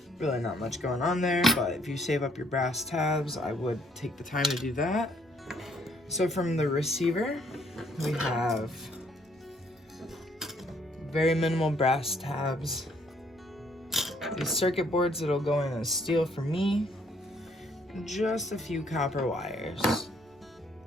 Really not much going on there, but if you save up your brass tabs, I would take the time to do that. So from the receiver, we have very minimal brass tabs. These circuit boards that'll go in as steel for me. Just a few copper wires.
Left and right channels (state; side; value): normal; both; correlation 0.67